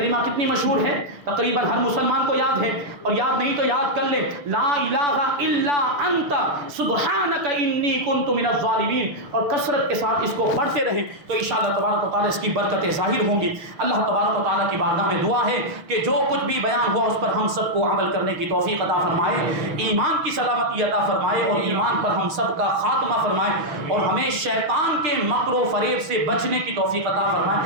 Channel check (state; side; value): late; left; 6.4 ms